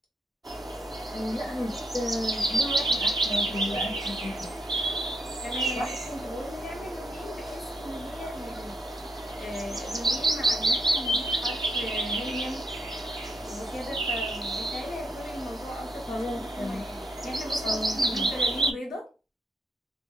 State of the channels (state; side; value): normal; both; correlation 0.78